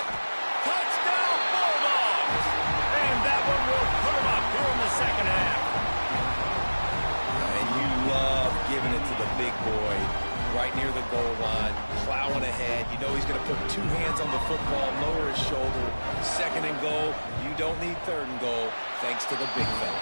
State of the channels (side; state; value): both; inverted; correlation -1.00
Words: Bulldogs! And that one will put him up here in the second half. And you love giving it to the big boy right near the goal line, plowing ahead. You know he's going to put 2 hands on the football, lower his shoulder. 2nd and goal, you don't need 3rd and goal, thanks to the big fella.